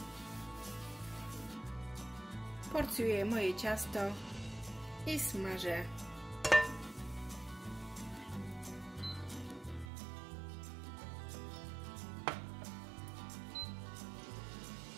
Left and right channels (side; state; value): left; drops out; at 9.9 s